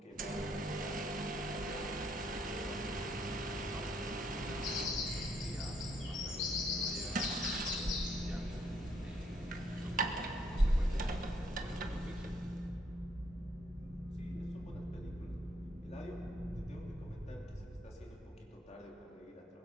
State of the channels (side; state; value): both; normal; correlation 0.71